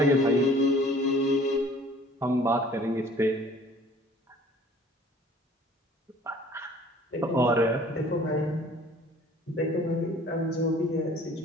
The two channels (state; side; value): normal; both; correlation 0.52